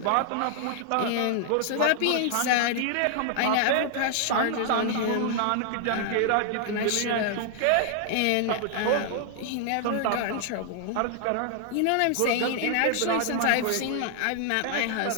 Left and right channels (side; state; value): both; different; correlation 0.00